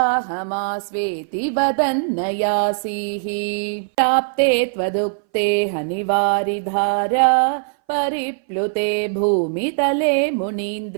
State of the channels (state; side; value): silent; left; 61 dB below the other